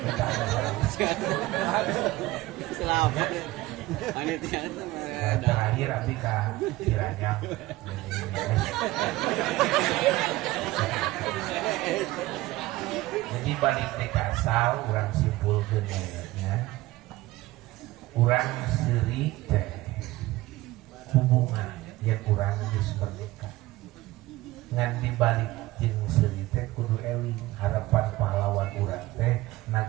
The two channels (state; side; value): quieter; left; 18.2 dB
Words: Selamat. Panitia terakhir abi ka Ciranyang. Jadi balik teh ka asal urang simpulkeun nya. Urang seuri teh hubungan yang urang geus bernikah. Ngan dibalik jeung seuri teh kudu eling harapan pahlawan urang teh